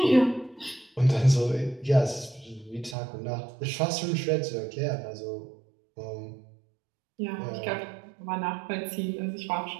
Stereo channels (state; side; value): drops out; left; at 3.0 s